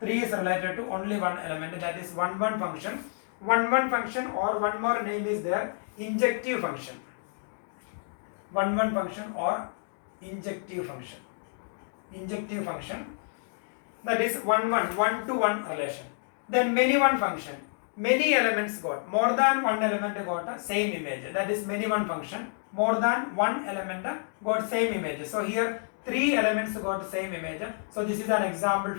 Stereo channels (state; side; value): silent; right; 58 dB below the other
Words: is related to only one element, that is one-one function. One-one function, or one more name is there, injective function. One-one function or injective function. Injective function, that is one-to-one relation. Then many-one function. Many elements got, more than one element got a same image, that is many-one function. More than one element got same image. So here 3 elements got same image. So this is an example